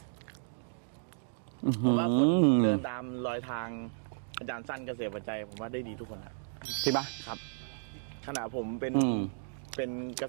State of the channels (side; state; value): left; silent; digital silence